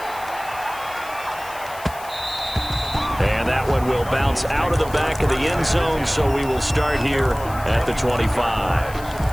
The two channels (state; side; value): noise; left; hiss, 18 dB below the sound